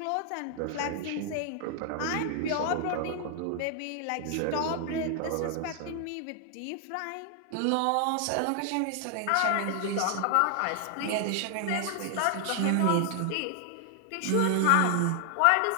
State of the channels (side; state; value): both; different; correlation 0.00